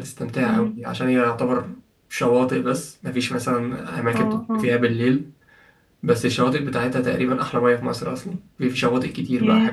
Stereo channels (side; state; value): both; identical; correlation 1.00